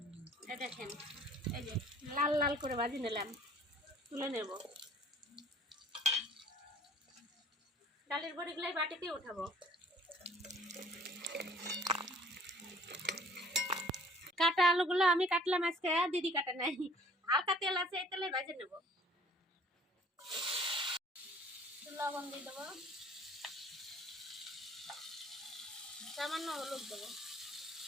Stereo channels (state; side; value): normal; both; correlation 0.54